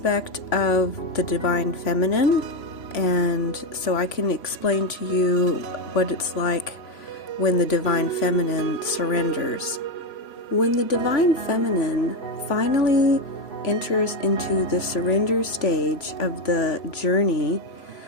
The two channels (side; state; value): right; late; 3.0 ms